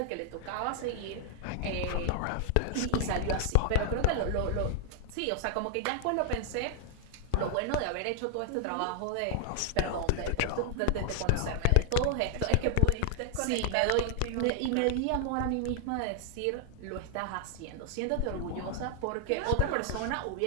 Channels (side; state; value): both; different; correlation 0.00